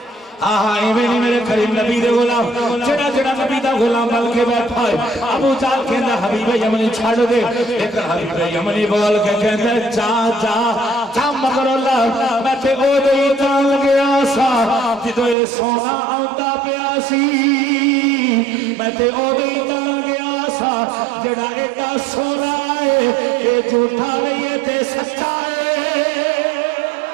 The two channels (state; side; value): drops out; left; at 15.4 s